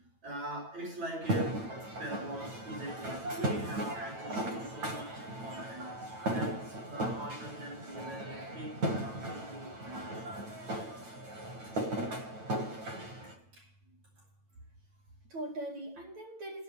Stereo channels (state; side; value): late; left; 9.0 ms